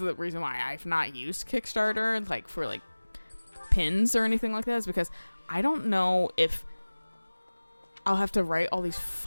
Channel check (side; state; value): both; inverted; correlation -1.00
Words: reason why I've not used Kickstarter like for like pins or anything like that, is because I don't know if I'll have to write all these